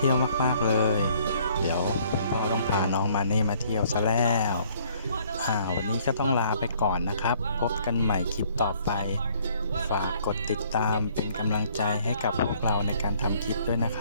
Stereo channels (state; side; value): inverted; both; correlation -0.61